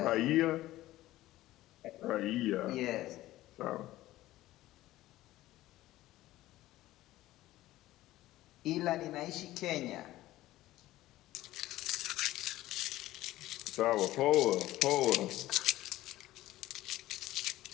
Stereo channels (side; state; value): right; quieter; 16.0 dB